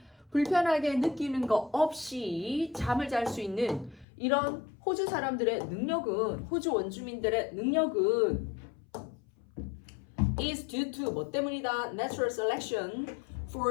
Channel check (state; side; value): drops out; right; at 4.0 s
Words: 불편하게 느끼는 거 없이 잠을 잘 수 있는 이런 호주 사람들의 능력은 호주 원주민들의 능력은 is due to 뭐 때문이다? Natural selection